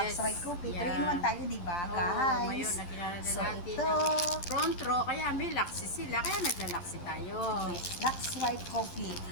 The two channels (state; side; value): late; right; 11 ms